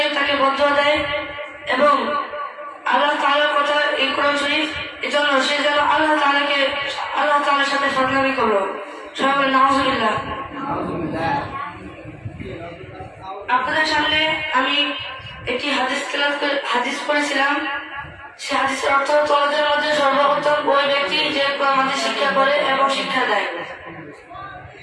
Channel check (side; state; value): both; identical; correlation 1.00